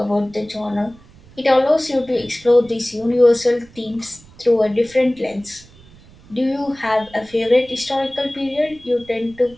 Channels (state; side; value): noise; right; rumble, 25 dB below the sound